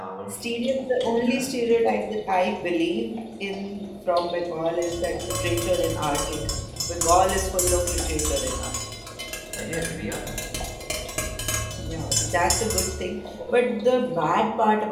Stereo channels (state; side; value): identical; both; correlation 1.00